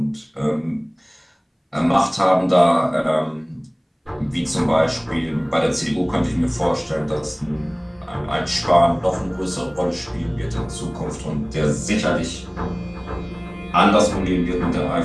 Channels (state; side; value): identical; both; correlation 1.00